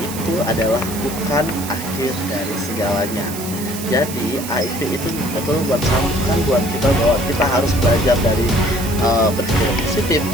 adalah bukan akhir dari segalanya. Jadi HIV itu betul buat camkan buat kita bahwa kita harus belajar dari berpikir positif,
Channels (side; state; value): right; noise; hiss, 10 dB below the sound